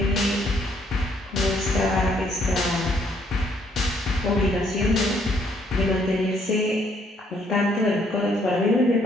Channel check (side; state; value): both; normal; correlation 0.68